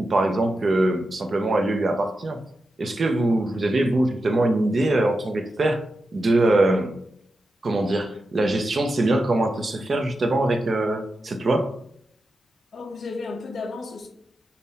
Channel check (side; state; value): both; normal; correlation 0.90